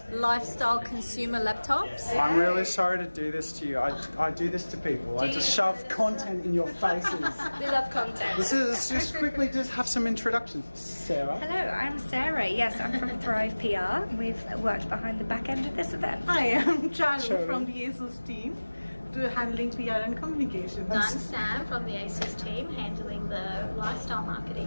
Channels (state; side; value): inverted; both; correlation -1.00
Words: lifestyle consumer laptops. I'm really sorry to do this to you. I do this to people. I just shove content in your faces. We love content. Let's just quickly just have some introductions. Sarah. Hello, I'm Sarah. Yes, I'm from Thrive PR. We've worked behind the back end of this event. Hi, I'm Charu from the ASUS team, handling PR and communications. I'm Sam from the ASUS team, handling the lifestyle